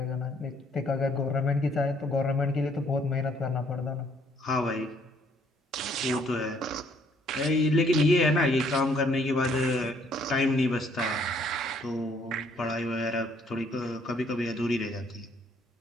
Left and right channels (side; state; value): both; normal; correlation 0.65